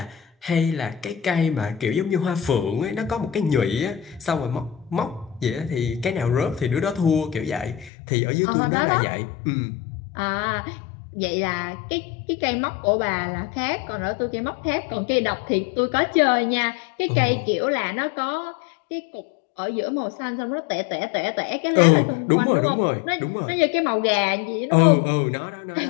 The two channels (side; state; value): right; drops out; at 7.9 s